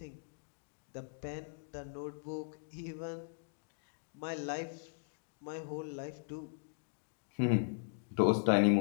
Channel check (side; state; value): right; silent; digital silence